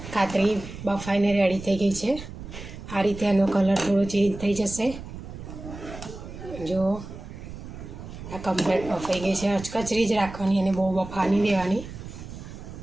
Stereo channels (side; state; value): right; noise; rumble, 12 dB below the sound